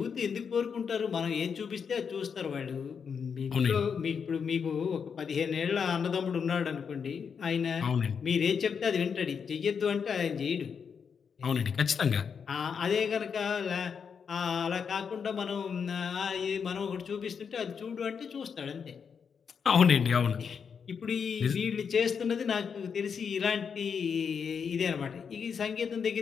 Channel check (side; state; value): right; quieter; 6.5 dB